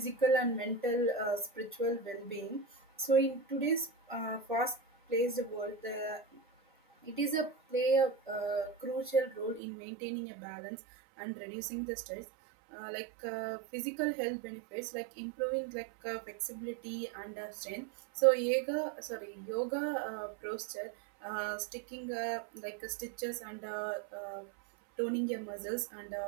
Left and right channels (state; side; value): drops out; left; at 9.6 s